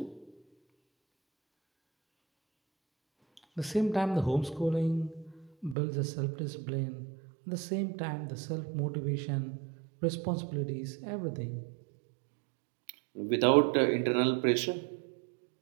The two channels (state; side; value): drops out; left; at 5.8 s